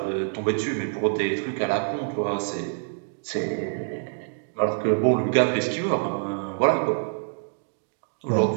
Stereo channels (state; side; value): silent; left; digital silence